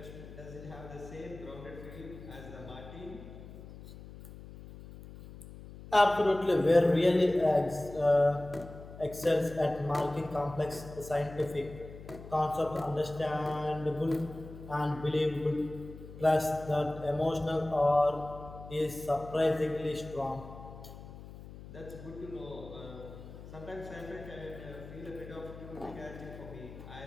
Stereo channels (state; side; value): noise; left; hum, 15 dB below the sound